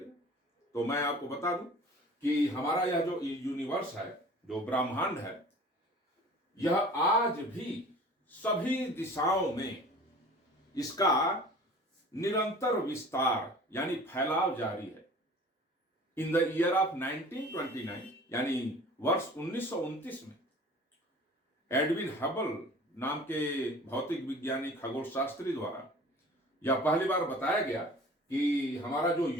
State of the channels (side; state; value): both; normal; correlation 0.45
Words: तो मैं आपको बता दूं कि हमारा यह जो यूनिवर्स है, जो ब्रह्मांड है, यह आज भी सभी दिशाओं में इसका निरंतर विस्तार यानी फैलाव जारी है। इन द ईयर ऑफ 1929 यानी वर्ष 1929 में एडविन हबल नाम के भौतिक विज्ञानी खगोल शास्त्री द्वारा यह पहली बार बताया गया कि हमारा जो